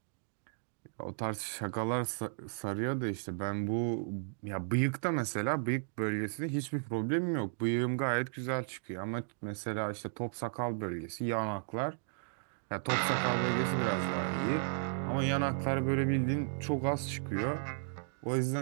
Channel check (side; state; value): left; silent; digital silence